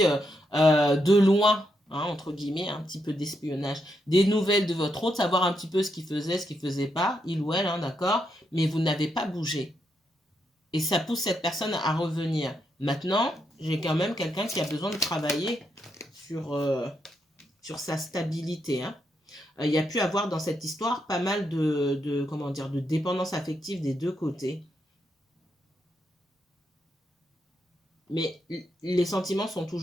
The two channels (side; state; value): both; normal; correlation 0.81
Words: de loin hein, entre guillemets, un petit peu d'espionnage. Des nouvelles de votre hôte, savoir un petit peu ce qu'il faisait, ce qu'il faisait pas, il ou elle, hein, d'accord, mais vous n'avez pas bougé. Et ça pousse cette personne à revenir. Maintenant, j'ai quand même quelqu'un qui a besoin de travailler sur sa stabilité, hein. Il y a pu avoir dans cette histoire pas mal comment dire, de dépendance affective des deux côtés. Mais les sentiments sont